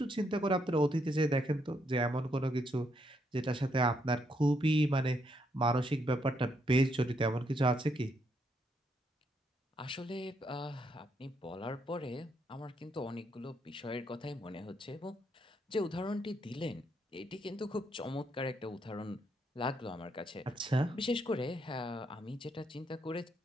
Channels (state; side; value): normal; both; correlation 0.76